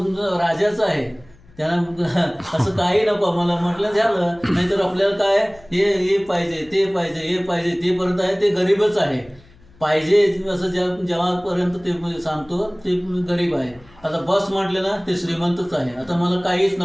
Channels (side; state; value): left; noise; hum, 27 dB below the sound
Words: राजाचा आहे. त्यांना असं काही नको मला म्हटलं झालं. नाहीतर आपल्याला काय हे पाहिजे, ते पाहिजे, हे पाहिजे, ते पर्यंत आहे ते गरीबच आहे. पाहिजे असं जेव्हापर्यंत ते सांगतो ते गरीब आहे. आता बस म्हटलं ना, ते श्रीमंतच आहे. आता मला काहीच